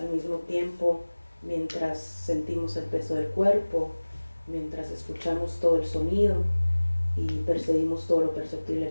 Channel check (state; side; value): inverted; both; correlation -1.00